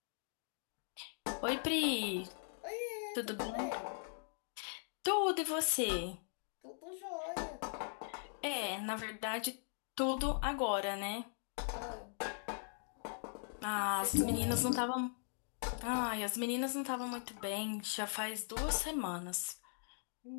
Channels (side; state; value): right; silent; digital silence